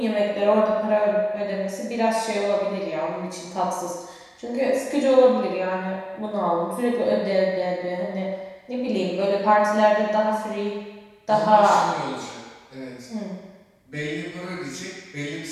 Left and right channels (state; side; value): identical; both; correlation 1.00